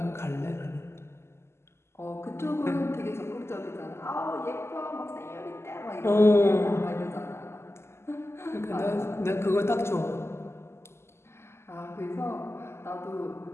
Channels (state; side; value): late; right; 0.12 ms